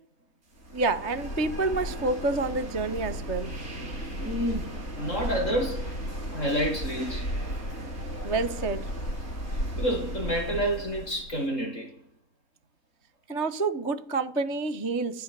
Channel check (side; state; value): right; late; 3.7 ms